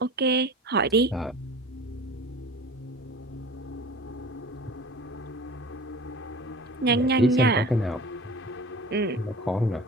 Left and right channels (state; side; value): normal; both; correlation 0.39